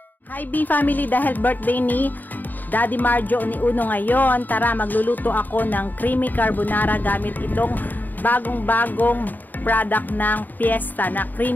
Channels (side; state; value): right; late; 0.087 ms